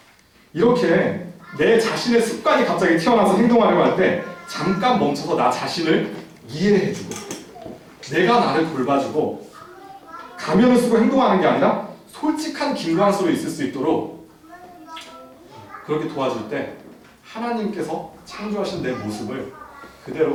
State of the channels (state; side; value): identical; both; correlation 1.00